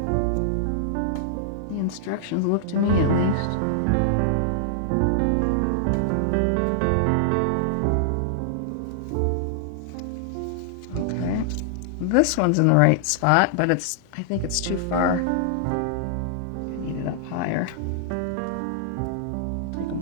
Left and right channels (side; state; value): both; different; correlation -0.01